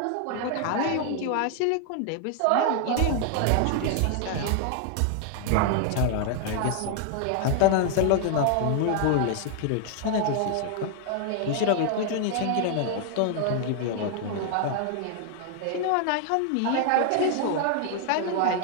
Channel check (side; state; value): both; different; correlation 0.00